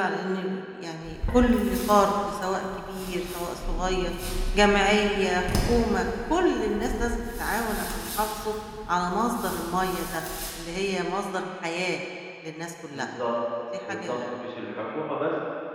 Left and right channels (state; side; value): identical; both; correlation 1.00